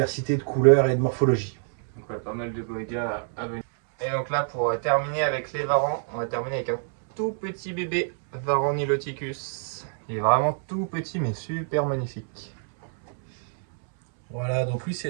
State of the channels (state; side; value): silent; left; 61 dB below the other